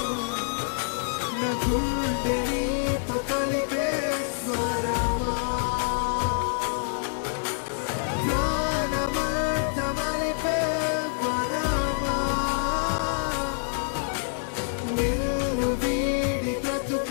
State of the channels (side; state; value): right; silent; 58 dB below the other